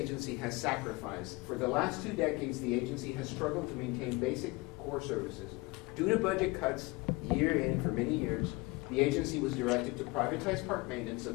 has sacrificed. For the last 2 decades, the agency has struggled to maintain basic core services. Due to budget cuts year in for many years, the agency was directed to privatize park maintenance,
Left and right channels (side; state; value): right; quieter; 24.3 dB